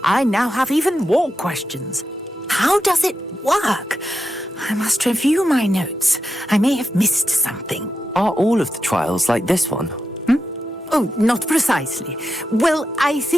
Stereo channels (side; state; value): both; normal; correlation 0.87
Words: I now have even more questions. How does it work? I must review my notes. I may have missed something. Are all of the trials like this one? Oh, not precisely. Well, I